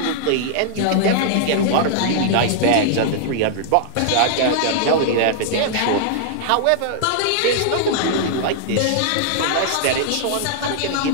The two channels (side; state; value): both; different; correlation -0.01